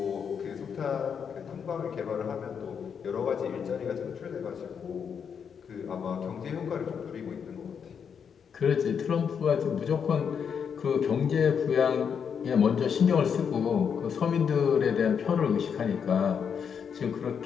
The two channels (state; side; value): quieter; right; 7.1 dB